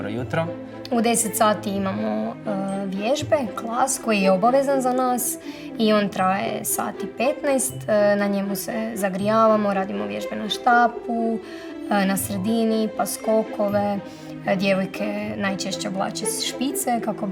jutro. U 10 sati imamo vježbe, klas koji je obavezan za nas i on traje sati 15. Na njemu se zagrijavamo, radimo vježbe na štapu, na sredini, pa skokove. Djevojke najčešće oblače špice kako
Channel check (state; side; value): identical; both; correlation 1.00